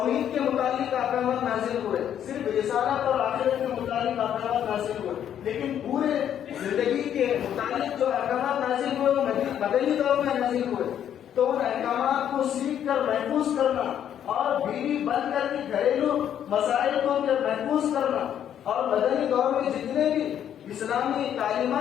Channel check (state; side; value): quieter; right; 9.8 dB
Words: کے متعلق احکامات نازل ہوئے، صرف رسالت اور آخرت کے متعلق احکامات نازل ہوئے، لیکن پورے زندگی کے متعلق جو احکامات نازل ہوئے وہ مدنی دور میں نازل ہوئے۔ تو ان احکامات کو سیکھ کر محفوظ کرنا اور بیوی بند کر کے گھریلو مسائل کو محفوظ کرنا، اور مدنی دور میں جتنے بھی اسلامی